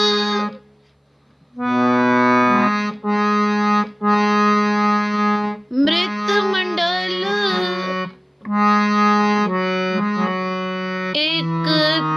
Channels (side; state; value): both; identical; correlation 1.00